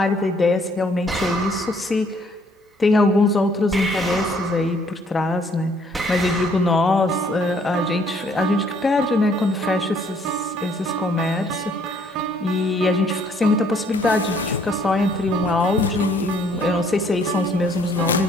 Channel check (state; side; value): normal; both; correlation 0.64